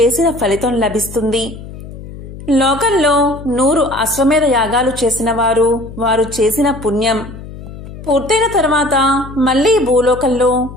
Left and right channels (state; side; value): noise; left; hum, 13 dB below the sound